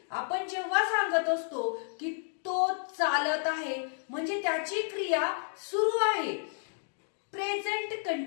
आपण जेव्हा सांगत असतो की तो चालत आहे म्हणजे त्याची क्रिया सुरू आहे प्रेझेंट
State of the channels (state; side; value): silent; right; 57 dB below the other